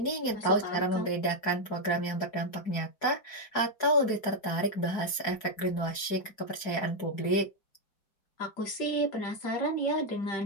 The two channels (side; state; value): right; late; 4.7 ms